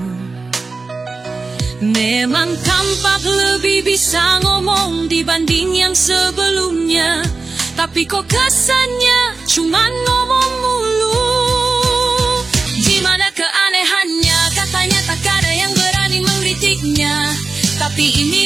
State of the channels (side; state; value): left; quieter; 3.9 dB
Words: Memang tampak lebih bisa ngomong dibanding yang sebelumnya, tapi kok kesannya cuman ngomong mulu. Gimana keanehannya, katanya tak ada yang berani mengkritiknya, tapi ini